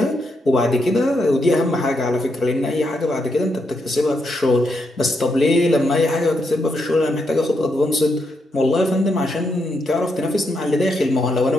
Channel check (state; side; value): normal; both; correlation 0.81